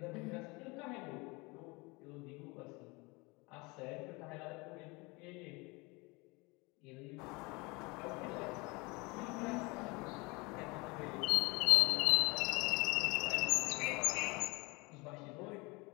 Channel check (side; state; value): right; quieter; 26.2 dB